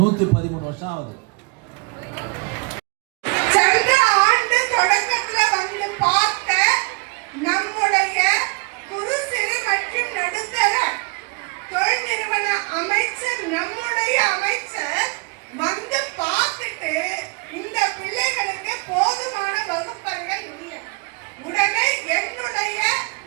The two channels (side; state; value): left; quieter; 30.1 dB